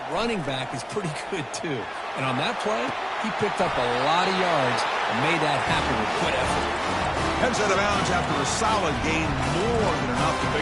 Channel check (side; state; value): both; identical; correlation 1.00